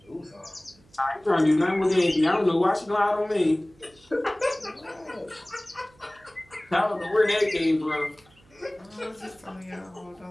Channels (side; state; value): right; noise; hum, 29 dB below the sound